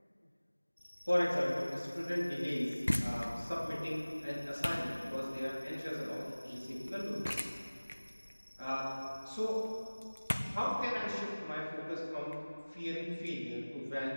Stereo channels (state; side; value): inverted; both; correlation -1.00